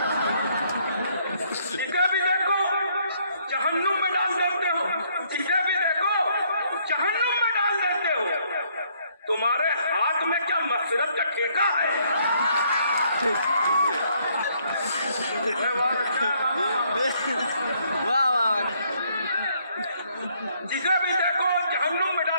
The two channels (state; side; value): inverted; both; correlation -0.68